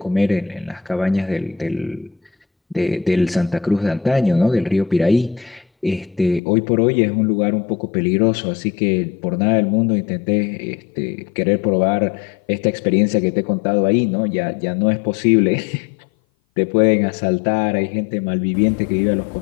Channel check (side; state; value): right; drops out; at 6.4 s